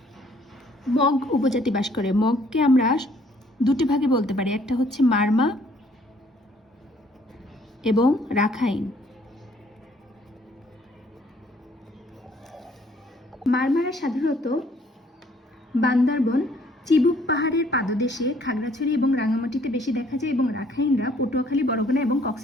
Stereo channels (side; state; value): both; normal; correlation 0.62